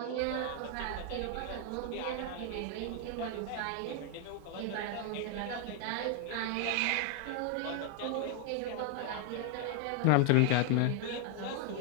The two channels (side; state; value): both; different; correlation 0.00